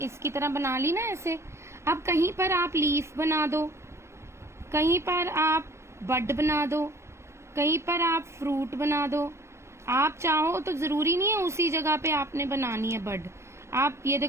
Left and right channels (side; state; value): left; late; 0.13 ms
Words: तरह बना ली ना ऐसे। अब कहीं पर आप लीफ बना दो, कहीं पर आप बड बना दो, कहीं पर आप फ्रूट बना दो। आप चाहो तो जरूरी नहीं है उसी जगह पे आपने बनानी है बड। आप ये